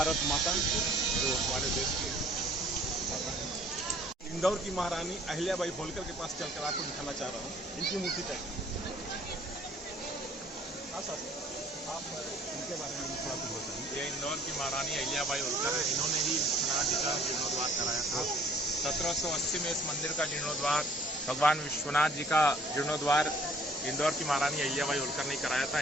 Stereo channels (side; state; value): both; normal; correlation 0.56